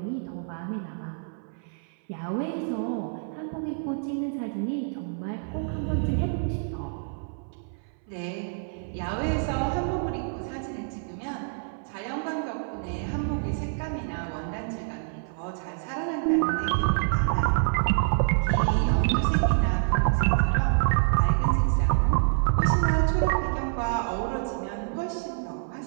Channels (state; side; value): silent; left; 60 dB below the other